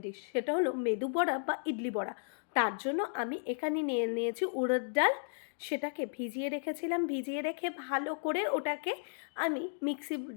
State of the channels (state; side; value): silent; right; digital silence